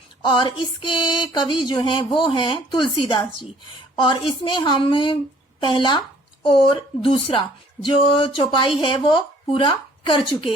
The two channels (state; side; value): normal; both; correlation 0.58